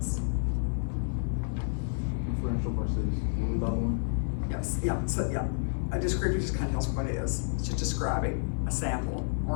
Differential versus what was the other one? Yes, yeah, so yeah. A descriptive just kind of tells what it is. It's just describing a sample or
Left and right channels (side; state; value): right; silent; digital silence